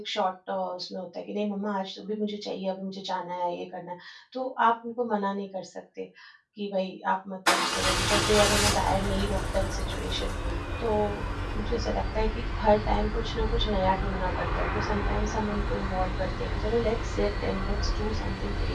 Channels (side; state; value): both; identical; correlation 1.00